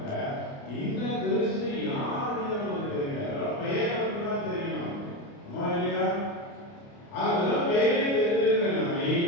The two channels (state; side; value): late; right; 29 ms